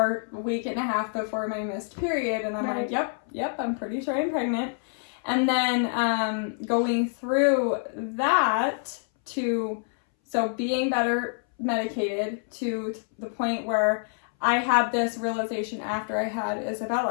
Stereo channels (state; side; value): silent; right; 60 dB below the other